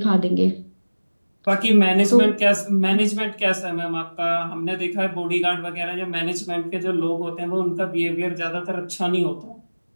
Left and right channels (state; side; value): inverted; both; correlation -1.00